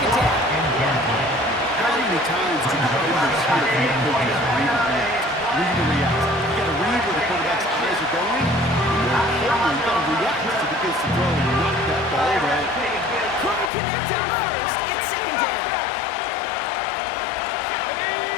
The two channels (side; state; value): right; drops out; at 13.7 s